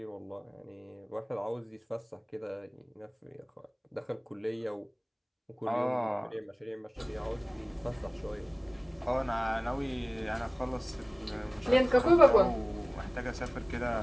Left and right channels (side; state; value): both; identical; correlation 1.00